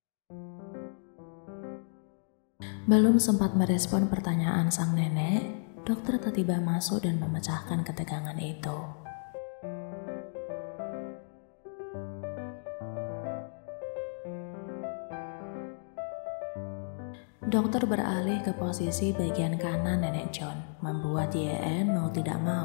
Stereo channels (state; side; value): silent; right; digital silence